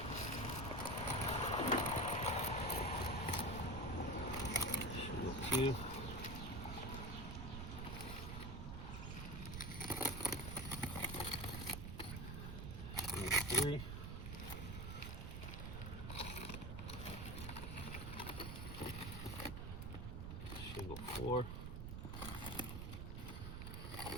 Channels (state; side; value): noise; right; rumble, 5 dB below the sound